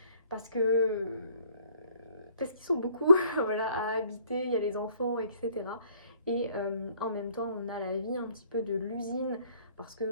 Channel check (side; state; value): both; inverted; correlation -0.60